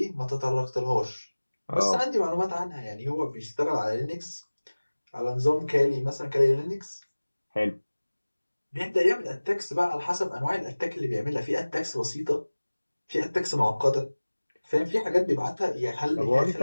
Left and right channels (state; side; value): inverted; both; correlation -1.00